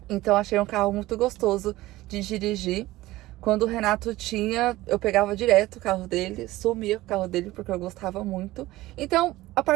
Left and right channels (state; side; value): quieter; left; 17.5 dB